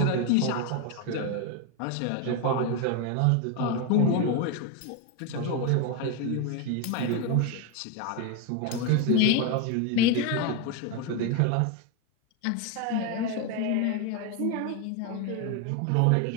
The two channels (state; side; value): different; both; correlation 0.01